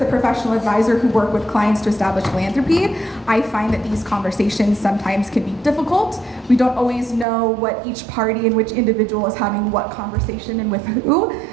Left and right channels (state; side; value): drops out; left; at 7.2 s